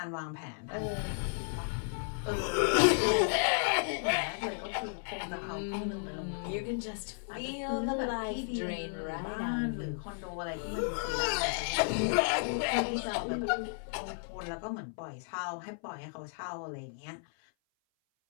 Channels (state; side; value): silent; right; 55 dB below the other